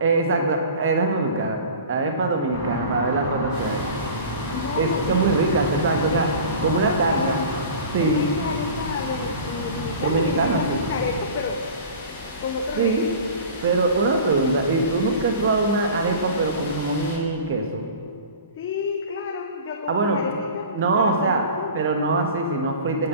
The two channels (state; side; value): inverted; both; correlation -0.38